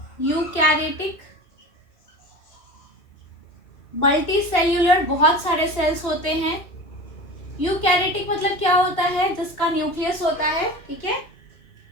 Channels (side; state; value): right; late; 2.8 ms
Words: यूकैरियोटिक मल्टी सेल्यूलर, बहुत सारे सेल्स होते हैं। यूकैरियोटिक मतलब क्या होता है, जिसका न्यूक्लियस होता है, ठीक है।